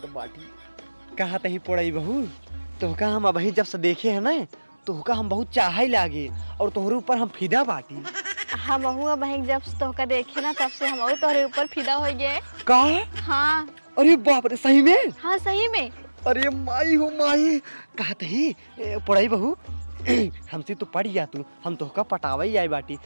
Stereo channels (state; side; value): inverted; both; correlation -1.00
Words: बाटी। कहा तही पड़ई बहू तोहका हम अभी जब से देखे है ना तोहका हम बहुत चाह ही लागे और तोहरे ऊपर हम फिदा बाटी। हम बहन जब तोहका देखे ना तब से हम तोहरे ऊपर फिदा हो गए। का हाँ अरे बाप रे सही में। हाँ सही में। अरे माई हो माई कहा तही पढ़ाई बहू हमसे तो पढ़ जा तू हम तोहका पटावा ही आई बाटी।